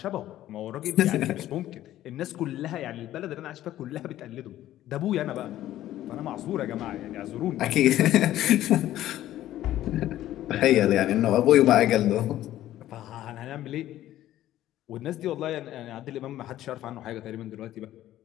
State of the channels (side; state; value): right; quieter; 13.5 dB